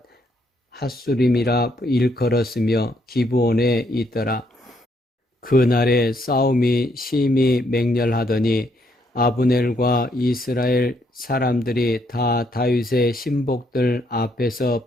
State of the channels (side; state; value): both; normal; correlation 0.73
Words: 핫수림이라 일컬었으며 기브온에 있더라. 그날에 싸움이 심히 맹렬하더니 아브넬과 이스라엘 사람들이 다 다윗의 신복들 앞에서